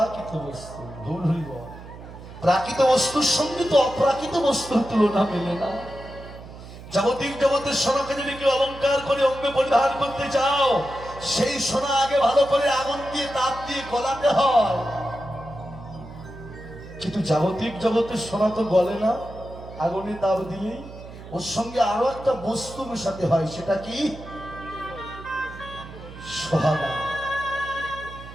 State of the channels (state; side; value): noise; right; hum, 15 dB below the sound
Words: বস্তু। গৌর হরি বল। প্রাকৃত বস্তুর সঙ্গে তো অপ্রাকৃত বস্তুর তুলনা মেলে না। জাগতিক জগতের সোনাকে যদি কেউ অলঙ্কার করে অঙ্গে পরিধান করতে চাও, সেই সোনা আগে ভালো করে আগুন দিয়ে তাপ দিয়ে গলাতে হয়। কিন্তু জাগতিক জগতের সোনা তো গলে না, আগুনে তাপ দিলেই। ওর সঙ্গে আরো একটা বস্তু মেশাতে হয়, সেটা কি? সোহাগা।